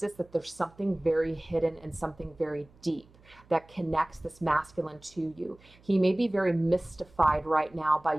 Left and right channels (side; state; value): right; noise; hum, 27 dB below the sound